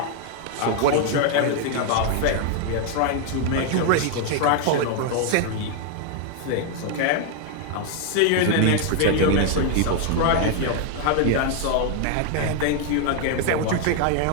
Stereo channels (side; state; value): both; different; correlation 0.00